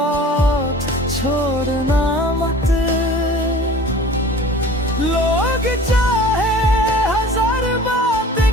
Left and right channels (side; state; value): both; normal; correlation 0.44